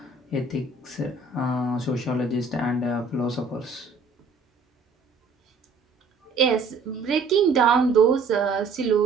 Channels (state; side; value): quieter; left; 4.2 dB